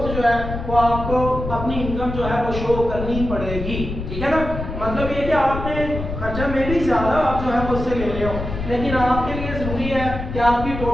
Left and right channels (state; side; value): noise; left; rumble, 6 dB below the sound